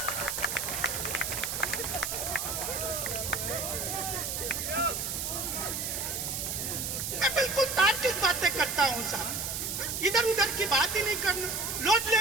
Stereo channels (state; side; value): noise; right; hiss, 2 dB below the sound